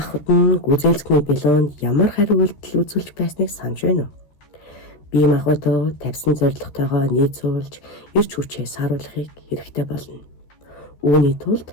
нь гүйцэлцэхний билоонд ямар хариу үйлдэл үзүүлж байсныг санаж байна уу? Бие махбодоо тавьсан зорилготойгоо нийцүүлж эрч хүчээ сааруулахыг хэрэгтэй болно. Үүний тулд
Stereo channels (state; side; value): late; right; 13 ms